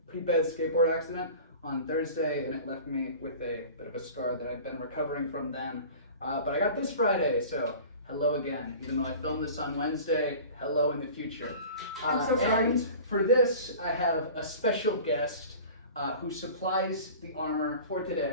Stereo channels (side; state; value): both; inverted; correlation -0.40